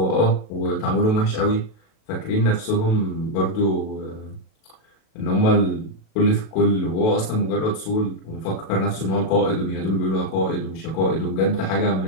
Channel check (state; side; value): late; right; 37 ms